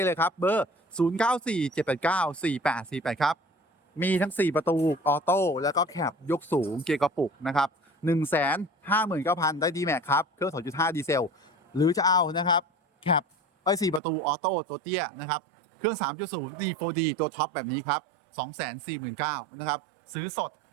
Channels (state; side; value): drops out; left; at 14.0 s